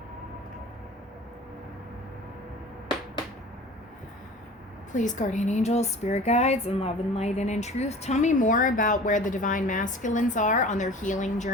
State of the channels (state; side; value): normal; both; correlation 0.42